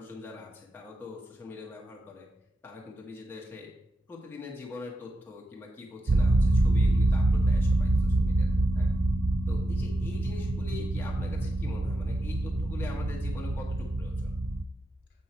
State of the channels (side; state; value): both; normal; correlation 0.89